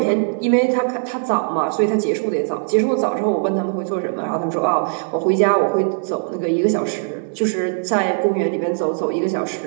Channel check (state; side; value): silent; left; 66 dB below the other